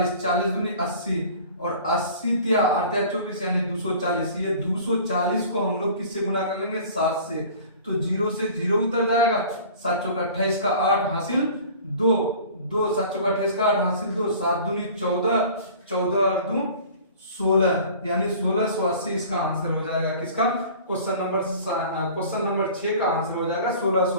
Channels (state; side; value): inverted; both; correlation -0.45